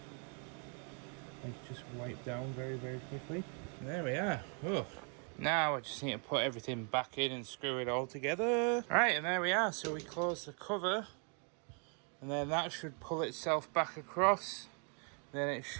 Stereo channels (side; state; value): left; quieter; 39.7 dB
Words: just wipe down very, very quickly. There we are. Oh. Now I just need to put everything back in and screw it all together. Right, and there we are. So we close the cover, and then that should pull itself back across. Then it